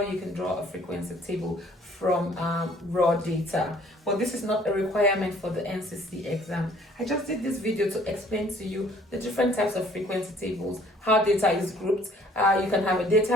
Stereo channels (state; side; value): normal; both; correlation 0.58